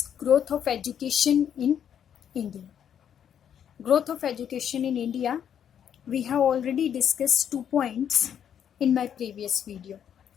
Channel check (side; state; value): right; quieter; 8.9 dB